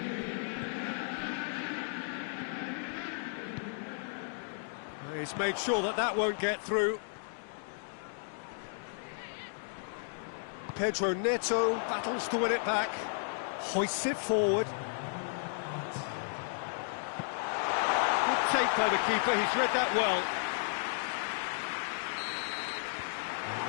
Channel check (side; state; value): right; silent; digital silence